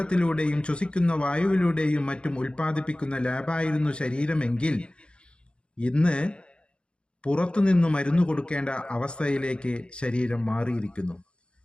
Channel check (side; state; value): right; late; 0.055 ms